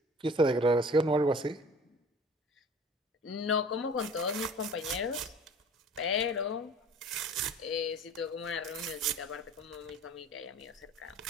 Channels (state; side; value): normal; both; correlation 0.45